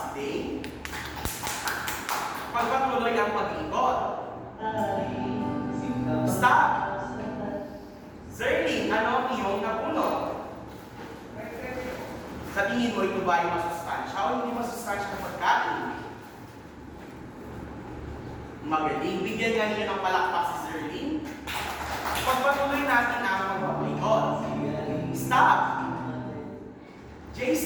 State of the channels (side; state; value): both; identical; correlation 1.00